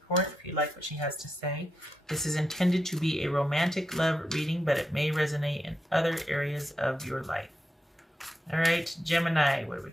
if you like what she has to say. This is intended to be a romantic love reading, but it may resonate in other areas of your life. All right, Gemini, what do we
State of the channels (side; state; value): both; normal; correlation 0.86